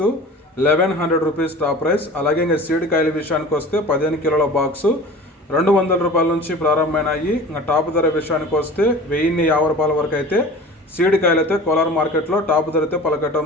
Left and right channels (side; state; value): both; normal; correlation 0.39